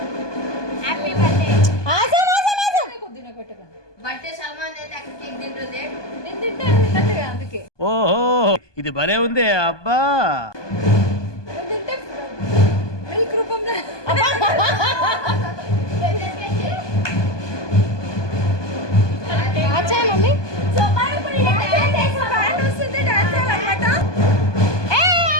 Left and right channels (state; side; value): late; right; 1.2 ms